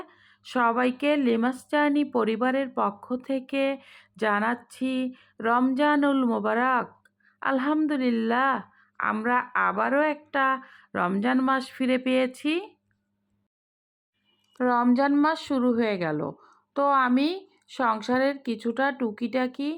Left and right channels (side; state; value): both; identical; correlation 1.00